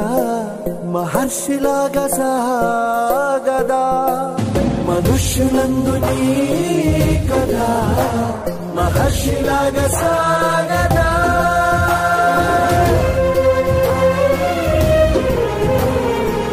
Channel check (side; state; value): both; identical; correlation 1.00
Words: మహర్షిలాగా సాగదా. మనుష్యులందు నీ కథ మహర్షిలాగా సాగదా.